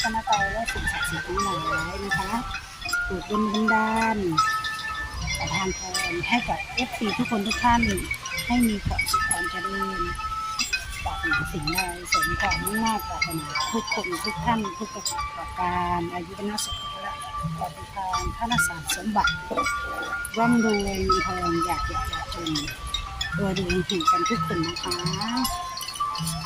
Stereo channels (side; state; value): both; identical; correlation 1.00